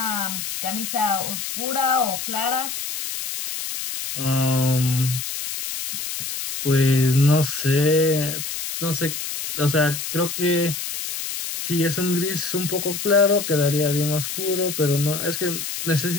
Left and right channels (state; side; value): noise; left; hiss, 5 dB below the sound